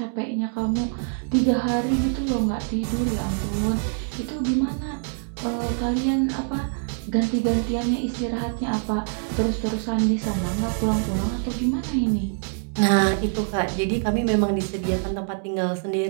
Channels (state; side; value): silent; left; 61 dB below the other